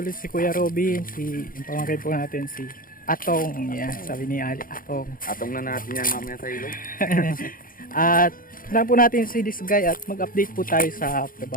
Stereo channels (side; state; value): right; late; 0.41 ms